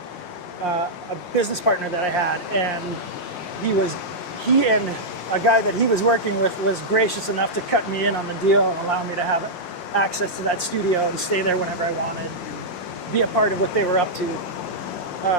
a business partner that I had, and he and a guy that he was working with was gracious enough to cut me in on the deal and allow me to have access to that studio and stay there whenever I wanted and be a part of what they were up to.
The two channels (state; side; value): late; right; 5.6 ms